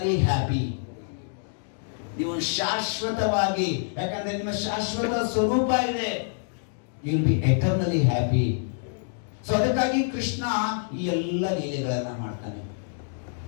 happy. ನೀವು ಶಾಶ್ವತವಾಗಿ, ಯಾಕಂದ್ರೆ ನಿಮ್ಮ ಶಾಶ್ವತ ಸ್ವರೂಪ ಇದೆ. You will be eternally happy. So ಅದಕ್ಕಾಗಿ ಕೃಷ್ಣ ಈ ಎಲ್ಲ ಲೀಲೆಗಳನ್ನ ಮಾಡ್ತಾನೆ.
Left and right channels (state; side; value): silent; right; digital silence